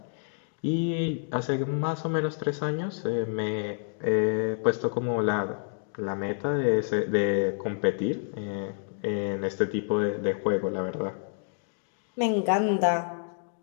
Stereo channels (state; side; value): silent; right; digital silence